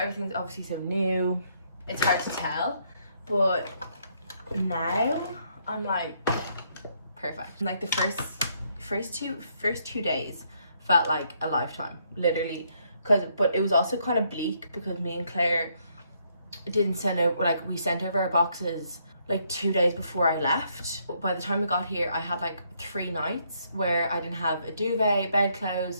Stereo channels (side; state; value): both; inverted; correlation -0.72